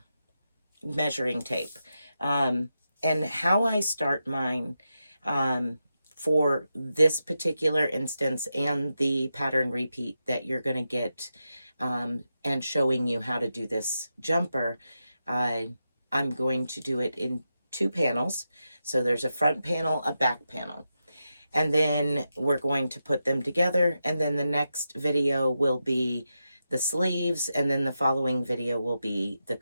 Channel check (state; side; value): inverted; both; correlation -0.88